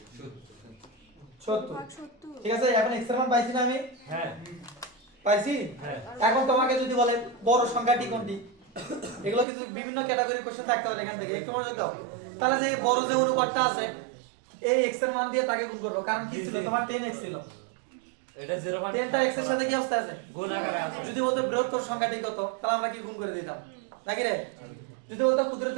ঠিক আছে? এখন x এর মান পাইছি না আমি? হ্যাঁ পাইছি। এখন তোমাকে যদি বলে বড় সংখ্যাটি কোনটি এগুলো কিছু বিভিন্ন ক্যাটাগরি কোশ্চেন থাকতে পারে এখান থেকে একটু মনোযোগ দাও। তাহলে যে বড় যে অনুপাতটা আছে এই x এর মান দিয়ে তাকে গুণ করব। কারণ কি ছিল? তোমার 10x ছিল। এটা 0.10 10টা x এর সাথে কি অবস্থা আছে? গুণ আকারে আছে। যদি বলতো বৃহত্তর সংখ্যাটি কত তাহলে আমরা কি গুণ করে দিতাম নাকি রে? যদি বলতো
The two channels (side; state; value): left; drops out; at 9.5 s